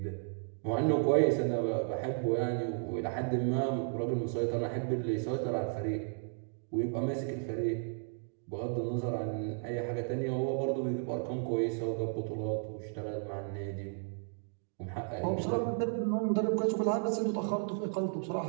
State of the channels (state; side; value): silent; left; 55 dB below the other